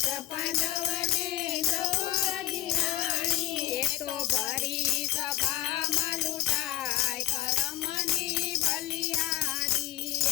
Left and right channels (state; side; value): quieter; right; 14.9 dB